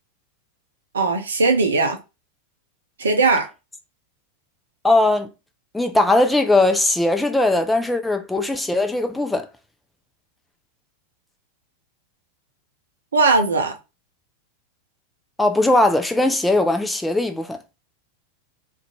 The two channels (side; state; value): both; normal; correlation 0.44